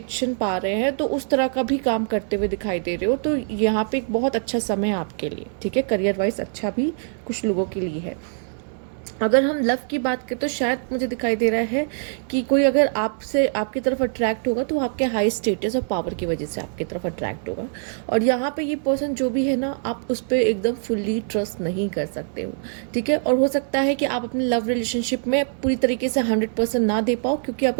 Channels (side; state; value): left; silent; digital silence